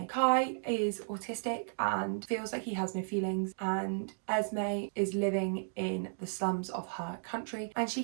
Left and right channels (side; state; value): left; silent; digital silence